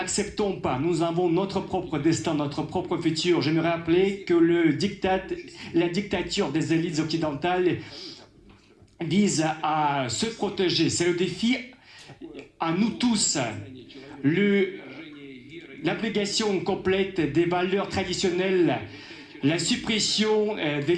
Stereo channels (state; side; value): identical; both; correlation 1.00